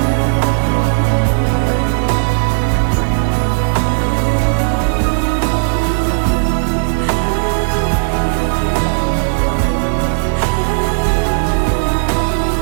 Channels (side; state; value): left; silent; digital silence